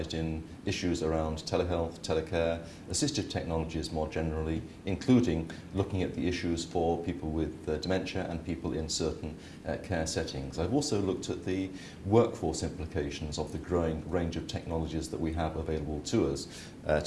in issues around telehealth, telecare, assistive technologies more generally, including looking at the issues for people with dementia and people in certain care settings. I've also looked at the workforce implications of the growing range of technologies that we have available to us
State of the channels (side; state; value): both; identical; correlation 1.00